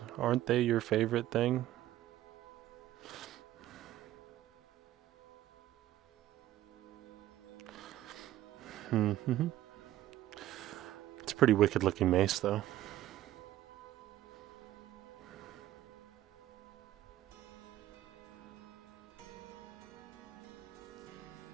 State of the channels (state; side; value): quieter; left; 14.0 dB